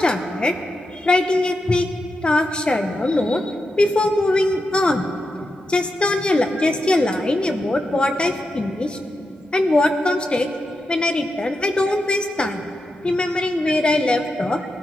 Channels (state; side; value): normal; both; correlation 0.88